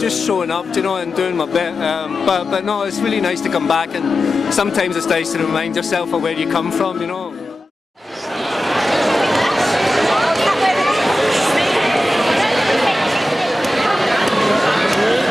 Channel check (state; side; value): normal; both; correlation 0.93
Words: showing up, you know, and doing my bit. But no, it's really nice to come back, and sometimes it's nice to remind yourself of where you come from, you know.